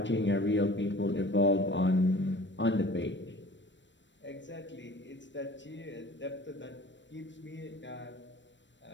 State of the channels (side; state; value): right; late; 0.53 ms